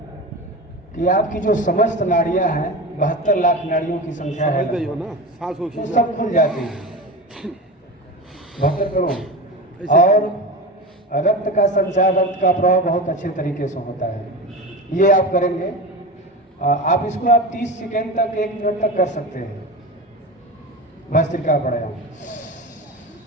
कि आपकी जो समस्त नाड़ियां हैं, 72 लाख नाड़ियों की संख्या है ना, सांस हो तो सब खुल जाती है 72 करोड़। और रक्त का संचार, रक्त का प्रवाह बहुत अच्छे तरीके से होता है। ये आप करेंगे। आप इसको आप 30 सेकेंड तक, 1 मिनट तक कर सकते हैं भस्त्रिका प्राणायाम।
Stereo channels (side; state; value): both; normal; correlation 0.26